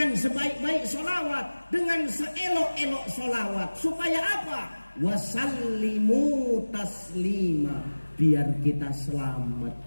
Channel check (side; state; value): both; inverted; correlation -1.00